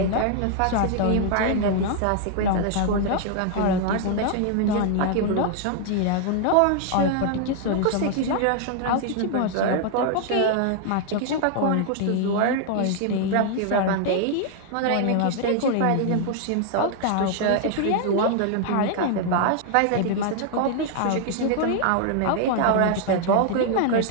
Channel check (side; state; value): both; different; correlation 0.00